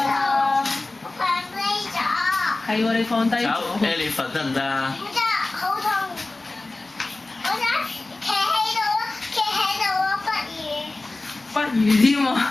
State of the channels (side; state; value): right; quieter; 3.1 dB